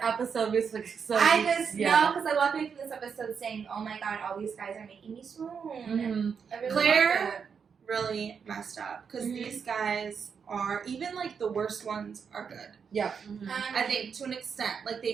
episode. We're just like, so I just yeah. know because I walked away from this episode saying, "Oh my god, all these guys are making me swoon." I really Claire- loved it. Really messed up because Mhm. these guys are even like the worst ones are good. I think to an extent, like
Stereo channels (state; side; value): quieter; left; 6.4 dB